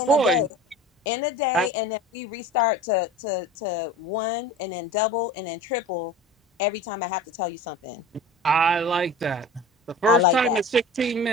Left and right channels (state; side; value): normal; both; correlation 0.37